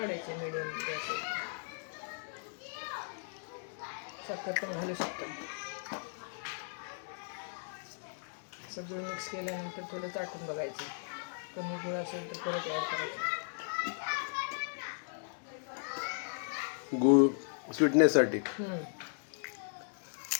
मिडियम गॅसवर. साखर पण घालू शकतो. सगळं मिक्स केल्यानंतर थोडं चाटून बघायचं. कमी गूळ असेल तर परत ॲड करायचं. गूळ स्वीटनेससाठी.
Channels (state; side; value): silent; right; digital silence